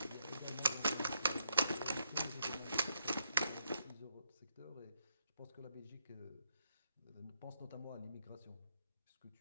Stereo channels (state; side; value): inverted; both; correlation -0.77